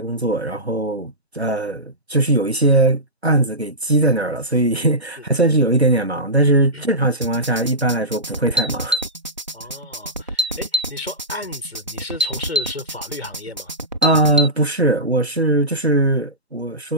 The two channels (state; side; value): normal; both; correlation -0.17